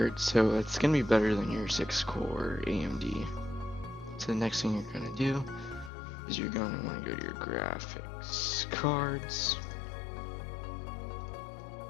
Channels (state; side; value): drops out; right; at 5.9 s